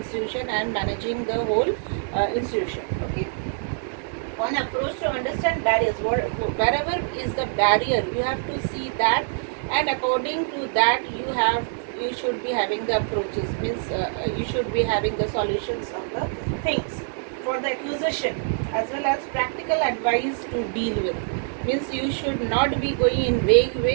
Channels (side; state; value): left; silent; digital silence